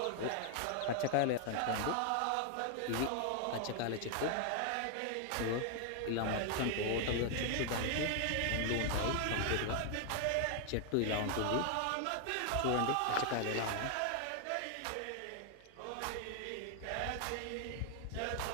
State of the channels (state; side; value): different; both; correlation 0.00